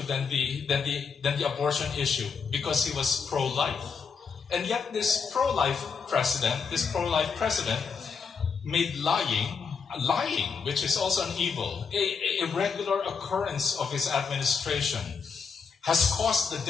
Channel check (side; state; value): right; quieter; 5.7 dB